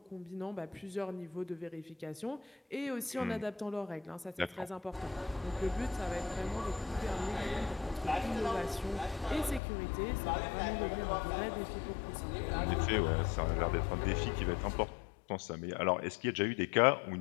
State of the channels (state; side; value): drops out; right; at 9.6 s